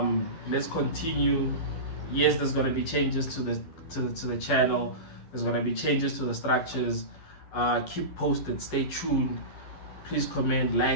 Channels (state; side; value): late; right; 12 ms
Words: continue. Yes, there's gonna be changes to the channel. There's gonna be changes to the structures. Keep posted. Stay tuned. Please comment,